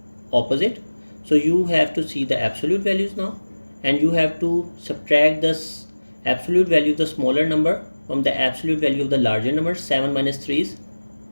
opposite. So you have to see the absolute values now, and you have to subtract the absolute value of the smaller number from the absolute value of the larger number. 7 minus 3 is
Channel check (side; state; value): both; inverted; correlation -1.00